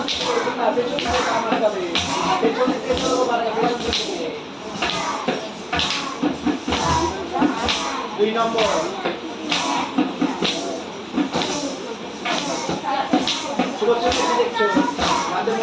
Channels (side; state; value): both; identical; correlation 1.00